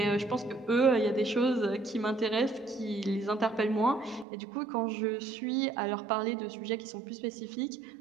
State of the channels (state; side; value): drops out; left; at 4.2 s